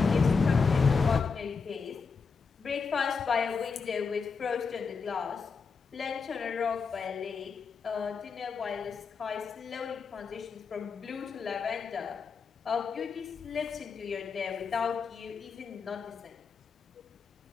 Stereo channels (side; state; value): right; quieter; 5.2 dB